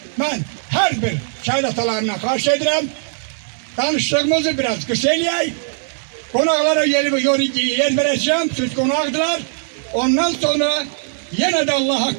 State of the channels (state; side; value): silent; left; 56 dB below the other